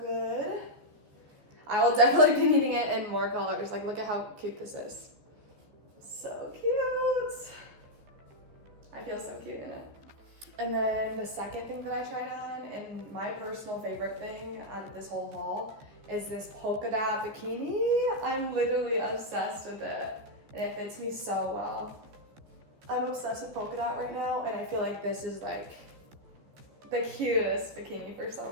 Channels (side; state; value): left; late; 14 ms